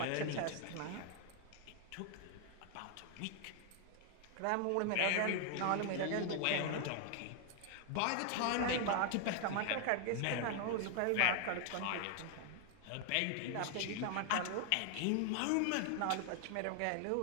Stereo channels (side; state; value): both; different; correlation 0.00